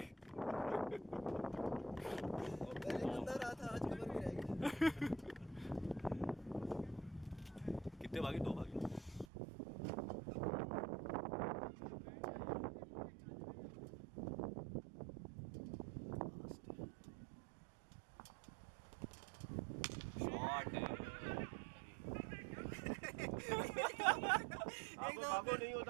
कितने भागे? 2 भागे। बाबू नहीं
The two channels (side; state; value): left; drops out; at 9.2 s